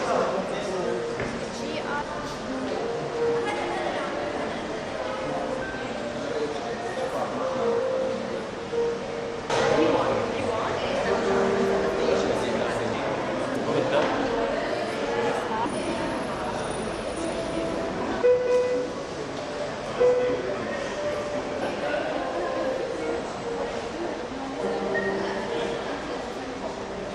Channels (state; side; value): identical; both; correlation 1.00